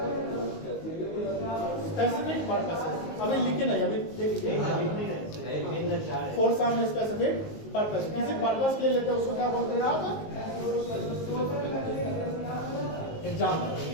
specific purposes। अभी लिखे नहीं, अभी देखिए for some specific purpose, किसी पर्पस के लिए लेते हैं उसको क्या बोलते हैं आप? Example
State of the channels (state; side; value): late; right; 19 ms